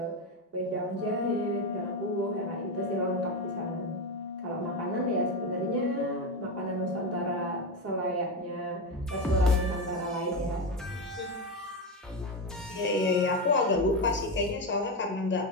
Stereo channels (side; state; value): both; normal; correlation 0.13